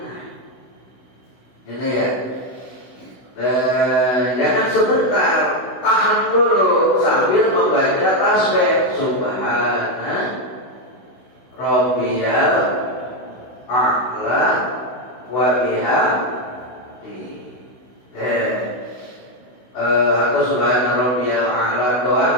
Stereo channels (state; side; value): late; right; 16 ms